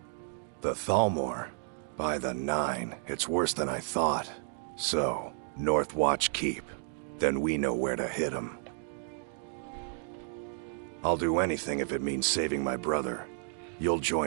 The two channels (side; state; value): left; silent; 57 dB below the other